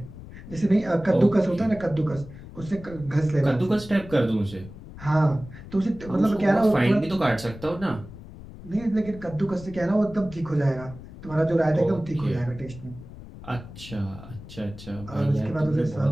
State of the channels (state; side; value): noise; left; rumble, 15 dB below the sound